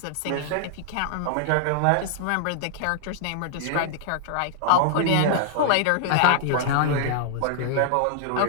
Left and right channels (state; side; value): different; both; correlation -0.01